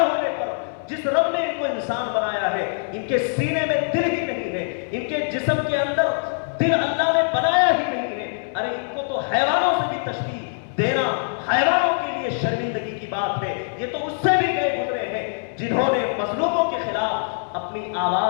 पर। जिस रब ने इनको इंसान बनाया है, इनके सीने में दिल ही नहीं है, इनके जिस्म के अंदर दिल अल्लाह ने बनाया ही नहीं है। अरे इनको तो हैवानों से भी तशबीह देना हैवानों के लिए शर्मिंदगी की बात है। ये तो उससे भी गए गुजरे हैं जिन्होंने मजलूमों के खिलाफ अपनी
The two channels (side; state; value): right; silent; 63 dB below the other